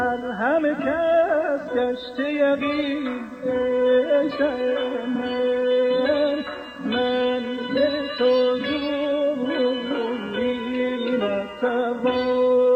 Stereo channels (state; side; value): identical; both; correlation 1.00